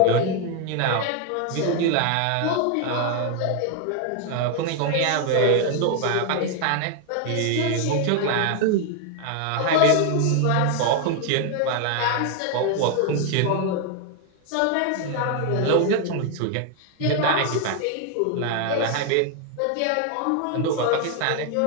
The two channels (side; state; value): both; different; correlation 0.01